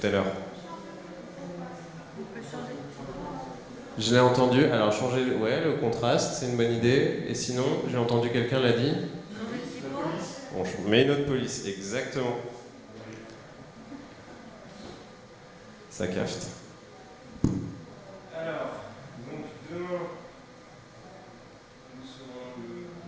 à l'heure. Je l'ai entendu. Alors changer le contraste, c'est une bonne idée. Et sinon, j'ai entendu quelqu'un l'a dit. Bon, je mets une autre police, exactement. Ça cafte. Alors, donc demain, nous serons demain,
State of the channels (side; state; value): both; identical; correlation 1.00